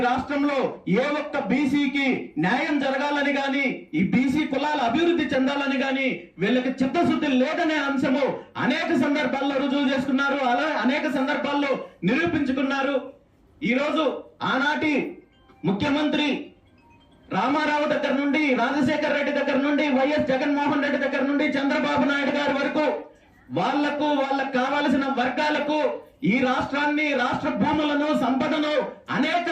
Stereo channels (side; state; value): both; identical; correlation 1.00